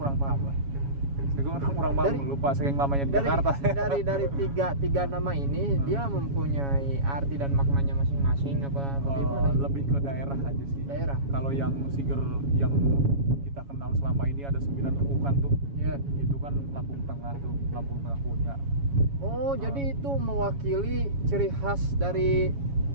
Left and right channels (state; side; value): late; left; 7.2 ms